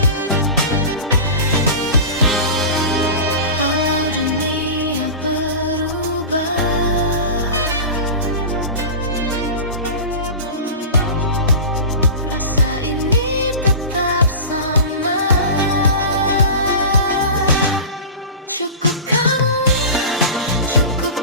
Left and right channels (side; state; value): both; inverted; correlation -0.31